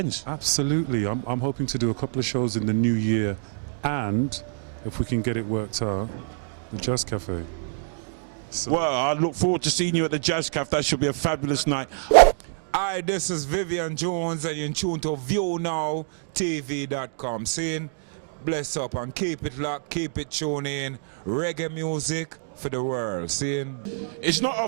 Absolutely. I'm hoping to do a couple of shows in the new year, and if we can get it worked out, the Jazz Cafe. So. Well, I look forward to seeing you at the Jazz Cafe. That should be a fabulous night. Hi, this is Vivian Jones, and you're in tune to ViewNowTv.com. Saying bless up and keep it locked, keep it tuned in. Reggae music for the world. Saying it's not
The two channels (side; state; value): left; silent; digital silence